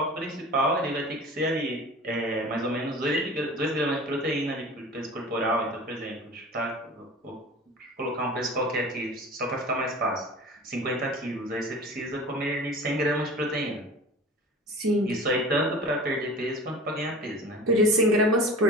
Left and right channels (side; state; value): both; normal; correlation 0.38